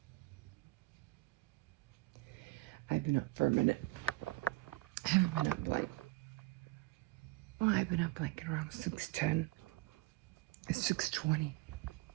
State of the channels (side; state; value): left; quieter; 19.2 dB